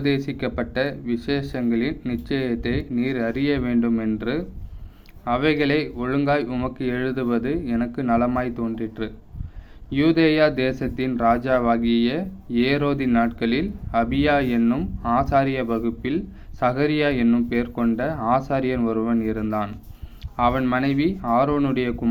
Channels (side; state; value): both; identical; correlation 1.00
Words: விசேஷங்களின் நிச்சயத்தை நீர் அறிய வேண்டுமென்று அவைகளை ஒழுங்காய் உமக்கு எழுதுவது எனக்கு நலமாய் தோன்றிற்று. யூதேயா தேசத்தின் ராஜாவாகிய ஏரோதின் நாட்களில் அபியா என்னும் ஆசாரிய வகுப்பில் சகரியா என்னும் பேர் கொண்ட ஆசாரியன் ஒருவன் இருந்தான். அவன் மனைவி ஆரோனுடைய